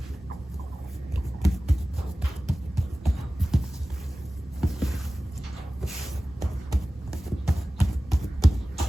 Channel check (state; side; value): normal; both; correlation 0.97